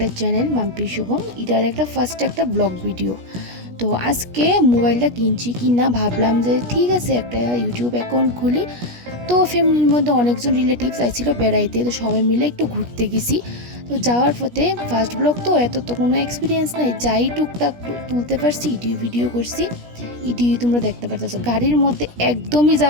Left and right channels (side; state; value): left; late; 17 ms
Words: চ্যানেল মাম্পি শুভম, এটার একটা ফার্স্ট একটা ব্লগ ভিডিও। তো আজকে মোবাইলটা কিনছি কিনা ভাবলাম যে ঠিক আছে একটা ইউটিউব অ্যাকাউন্ট খুলি। তো ফ্যামিলির মধ্যে অনেকজন রিলেটিভস আইছিল বেড়াইতে, তো সবাই মিলে একটু ঘুরতে গেছি। তো যাওয়ার পথে ফার্স্ট ব্লগ তো এত তো কোনো এক্সপিরিয়েন্স নাই, যাই টুকটাক তুলতে পারছি ভিডিও করছি। তোমরা দেখতে পারতেছো গাড়ির মধ্যে একদমই